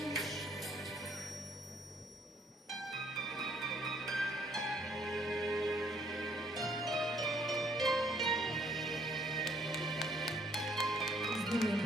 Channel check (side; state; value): both; normal; correlation 0.65